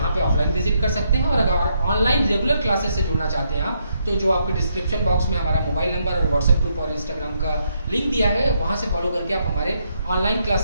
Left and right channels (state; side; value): inverted; both; correlation -0.77